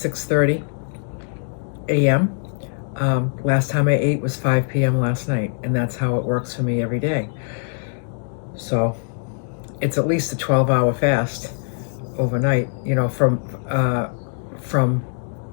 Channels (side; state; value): right; silent; digital silence